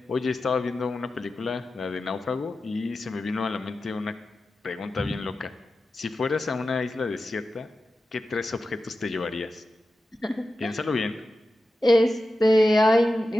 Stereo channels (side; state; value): both; normal; correlation 0.93